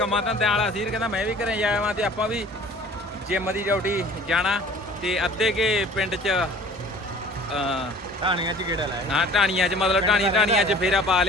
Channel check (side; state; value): both; normal; correlation 0.48